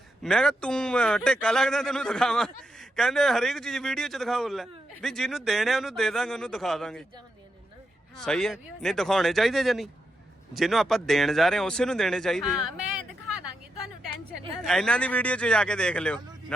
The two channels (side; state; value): both; normal; correlation 0.84